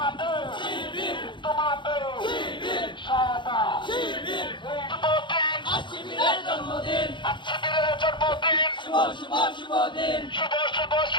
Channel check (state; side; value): late; right; 0.23 ms